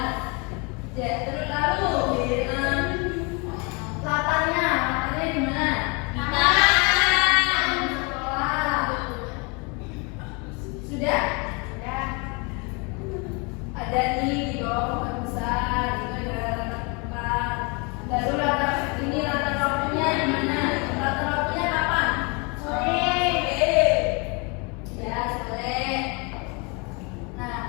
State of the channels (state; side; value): quieter; right; 31.2 dB